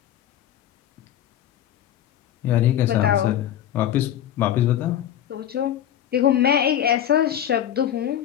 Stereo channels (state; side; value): quieter; right; 10.8 dB